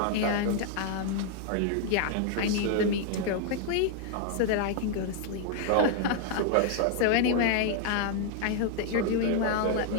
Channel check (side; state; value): both; different; correlation 0.00